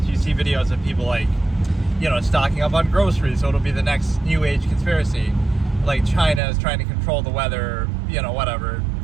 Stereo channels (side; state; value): left; drops out; at 6.4 s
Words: You see videos of people stocking up on groceries, so it'll be the next new age conspiracy. Like China is trying to control the weather, whatever.